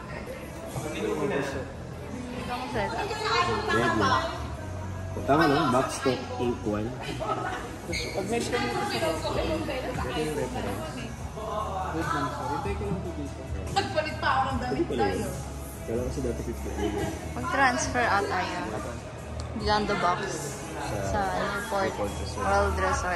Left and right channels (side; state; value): both; identical; correlation 1.00